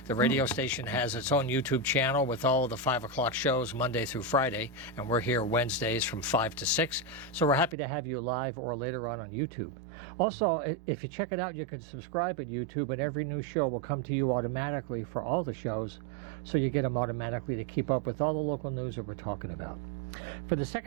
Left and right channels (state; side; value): drops out; left; at 7.8 s